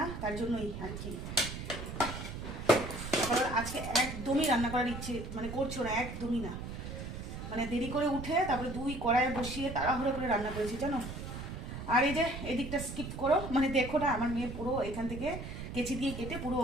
তার জন্যই আর কি। কারণ আজকে একদমই রান্না করার ইচ্ছে মানে করছো না, একদমই না। মানে দেরি করে উঠে তারপরে 2 কড়াইয়ে বসিয়ে তাড়াহুড়ো করে রান্না করেছি জানো। আর এই যে এদিকটা স্কিপ করো, মানে দেখো না, আমার মেয়ে পুরো এখান থেকে কেচি দিয়ে কেটে পুরো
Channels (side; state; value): right; noise; rumble, 8 dB below the sound